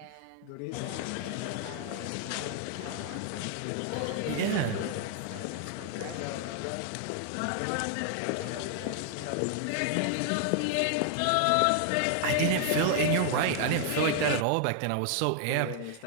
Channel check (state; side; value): different; both; correlation 0.00